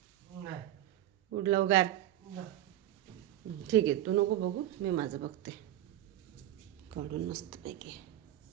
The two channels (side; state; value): left; quieter; 13.1 dB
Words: नाही. उठ लवकर. ठीक आहे, तू नको बघू, मी माझं बघते. काढून मस्तपैकी.